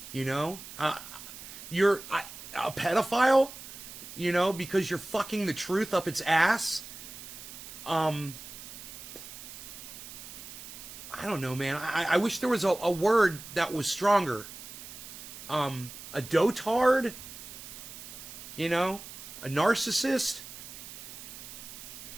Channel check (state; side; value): noise; right; hiss, 13 dB below the sound